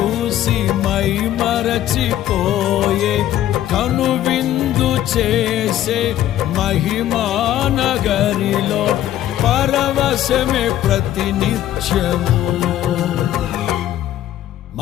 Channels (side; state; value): right; quieter; 12.5 dB